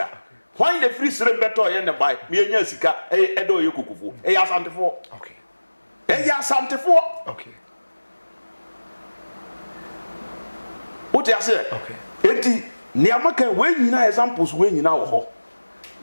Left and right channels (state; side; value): inverted; both; correlation -1.00